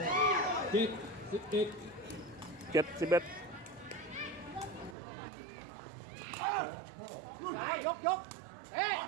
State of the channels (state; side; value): drops out; left; at 5.0 s